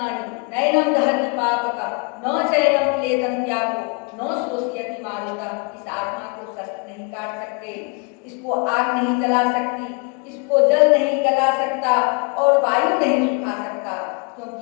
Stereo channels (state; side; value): quieter; right; 31.8 dB